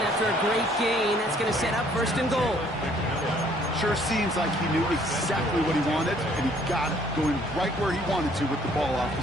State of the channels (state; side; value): normal; both; correlation 0.61